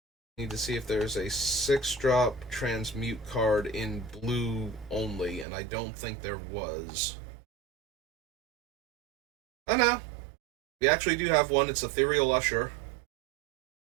Need to see if there's a 6-drop Transmute card in blue only, and I don't think there was. Oh no. We actually do have one. It's Ethereal Usher.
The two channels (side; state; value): left; drops out; at 5.5 s